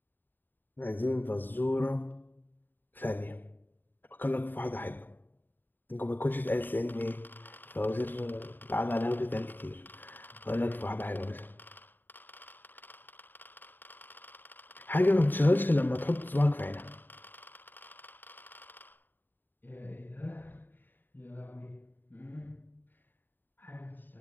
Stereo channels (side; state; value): right; late; 0.091 ms